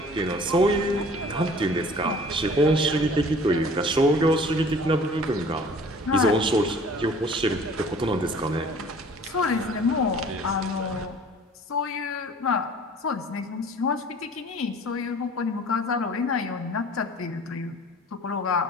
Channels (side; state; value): both; normal; correlation 0.49